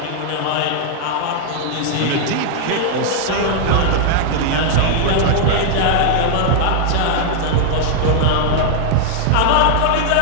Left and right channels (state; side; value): different; both; correlation 0.00